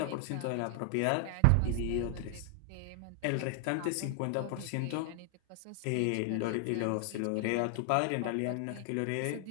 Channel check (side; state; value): both; different; correlation 0.00